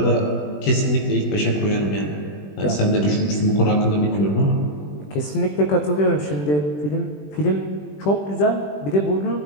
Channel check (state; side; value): late; right; 20 ms